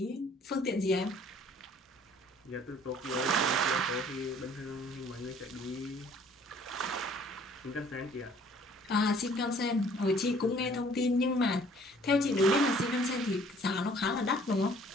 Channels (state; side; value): normal; both; correlation 0.56